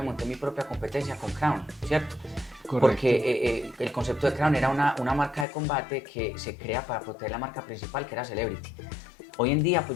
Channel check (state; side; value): drops out; right; at 5.5 s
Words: monté mi propia competencia con Crown, ¿cierto? Correcto. Porque el concepto de Crown era una marca de combate que se crea para proteger la marca principal, que era Celebrity. Hoy en día, pues